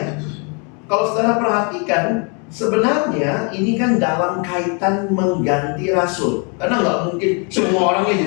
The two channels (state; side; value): quieter; right; 35.4 dB